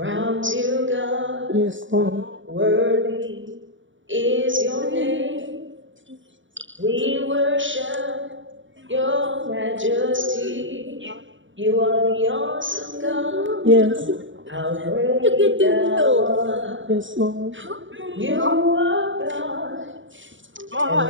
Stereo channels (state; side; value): late; left; 0.56 ms